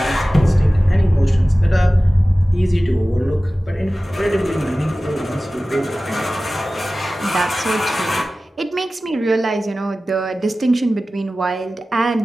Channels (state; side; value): normal; both; correlation 0.96